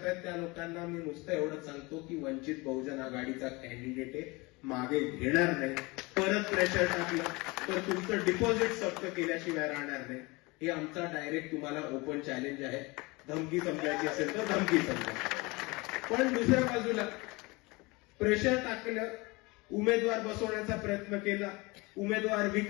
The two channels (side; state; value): right; quieter; 24.7 dB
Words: त्या लोकांना मी नुसतं एवढंच सांगतो की वंचित बहुजन आघाडीचा कॅन्डिडेट आहे, मागे घेणार नाही. परत प्रेशर टाकलं तर तुमचं डिपॉझिट जप्त केल्याशिवाय राहणार नाही. हे आमचा डायरेक्ट तुम्हाला ओपन चॅलेंज आहे. धमकी समजायची असेल तर धमकी समजा. पण दुसऱ्या बाजूला प्रेशर टाकलं, उमेदवार बसवण्याचा प्रयत्न केला, उमेदवार